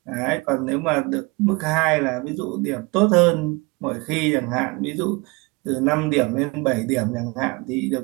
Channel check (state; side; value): quieter; left; 26.4 dB